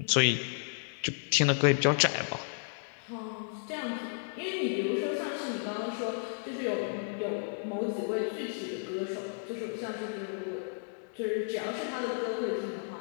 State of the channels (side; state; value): right; silent; digital silence